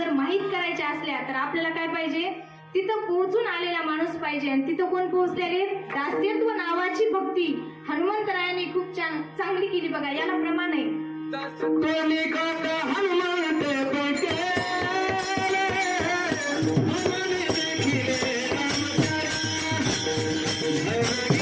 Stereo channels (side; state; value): both; identical; correlation 1.00